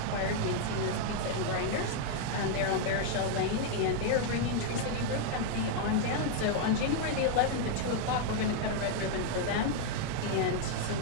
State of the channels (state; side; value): different; both; correlation 0.00